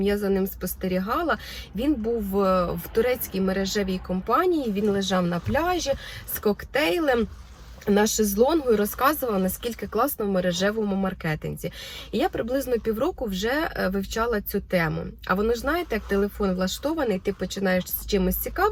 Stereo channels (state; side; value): identical; both; correlation 1.00